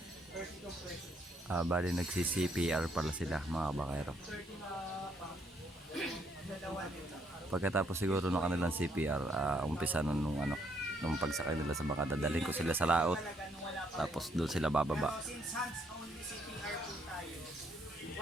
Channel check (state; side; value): normal; both; correlation 0.71